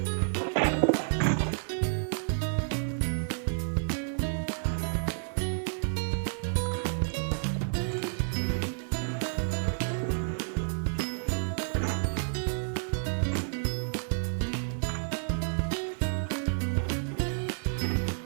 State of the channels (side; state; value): left; silent; digital silence